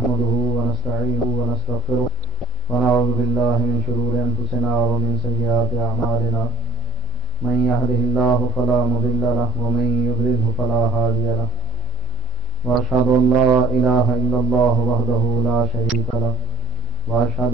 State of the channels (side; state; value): left; quieter; 7.7 dB